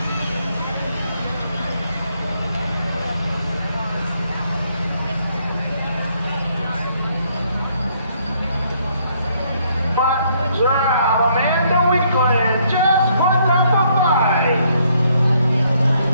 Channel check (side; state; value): both; inverted; correlation -0.69